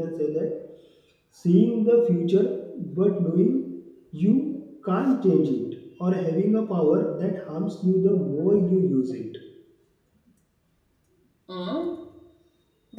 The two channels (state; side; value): identical; both; correlation 1.00